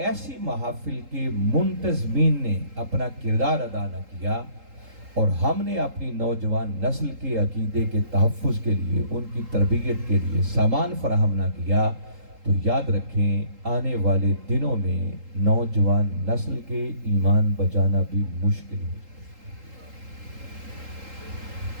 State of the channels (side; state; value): left; late; 3.8 ms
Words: محافل کے منتظمین نے اپنا کردار ادا نہ کیا، اور ہم نے اپنی نوجوان نسل کے عقیدے کے تحفظ کے لیے، ان کی تربیت کے لیے سامان فراہم نہ کیا، تو یاد رکھیں آنے والے دنوں میں نوجوان نسل کے ایمان بچانا بھی مشکل ہے۔